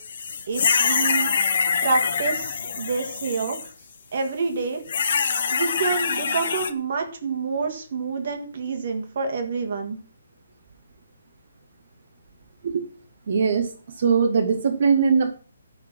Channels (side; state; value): both; inverted; correlation -0.71